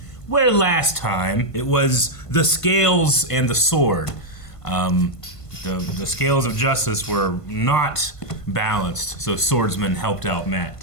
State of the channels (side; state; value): right; late; 1.5 ms